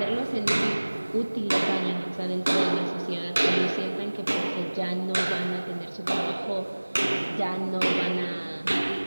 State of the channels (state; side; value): inverted; both; correlation -1.00